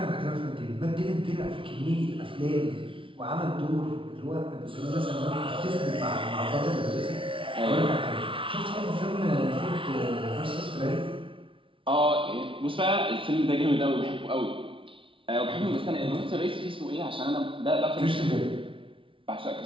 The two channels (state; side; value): late; left; 0.25 ms